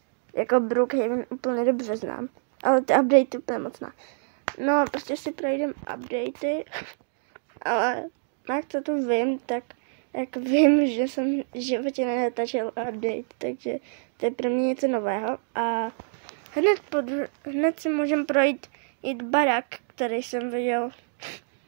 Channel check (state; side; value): silent; left; digital silence